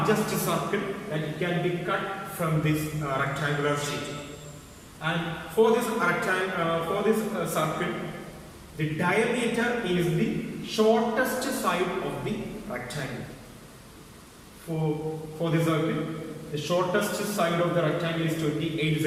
circle that can be cut from this rectangular sheet. And for this circle, the diameter is the shortest side of the rectangle. For the circle, the shortest side of the rectangle is 28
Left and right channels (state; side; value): identical; both; correlation 1.00